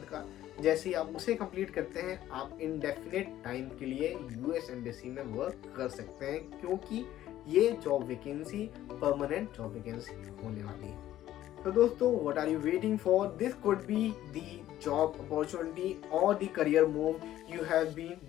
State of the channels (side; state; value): right; quieter; 13.2 dB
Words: का। जैसे ही आप उसे कंप्लीट करते हैं, आप इनडेफिनेट टाइम के लिए यूएस एम्बेसी में वर्क कर सकते हैं, क्योंकि ये job vacancy permanent job vacancy होने वाली है। तो दोस्तों, what are you waiting for? This could be the job opportunity और the career move you have been